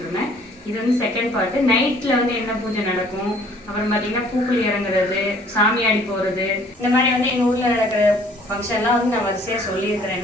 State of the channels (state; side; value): normal; both; correlation 0.57